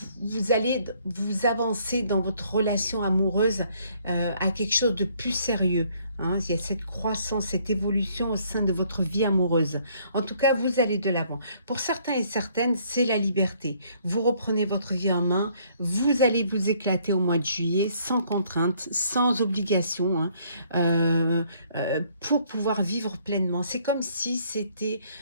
vous allez vous avancer dans votre relation amoureuse à quelque chose de plus sérieux, Hein, il y a cette croissance, cette évolution au sein de votre vie amoureuse. En tout cas, vous allez de l'avant. Pour certains et certaines, c'est la liberté. Vous reprenez votre vie en main, vous allez vous éclater au mois de juillet, sans contrainte, sans obligation, hein, pour pouvoir vivre pleinement. C'est comme si c'était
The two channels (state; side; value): inverted; both; correlation -0.64